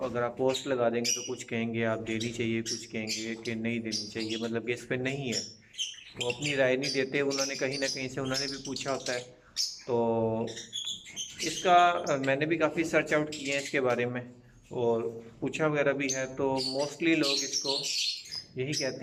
اگر آپ پوسٹ لگا دیں گے تو کچھ کہیں گے آپ دینی چاہیے، کچھ کہیں گے کہ نہیں دینی چاہیے، مطلب کہ اس پہ نہیں ہے، وہ اپنی رائے نہیں دیتے، انہوں نے کہیں نہ کہیں سے انہوں نے بھی پوچھا ہوتا ہے۔ تو اس کا میں نے بھی کافی سرچ آؤٹ کیے ہیں اس کے بارے میں اور پوچھا وغیرہ بھی ہے، تو موسٹلی لوگ اس کو یہی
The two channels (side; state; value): both; identical; correlation 1.00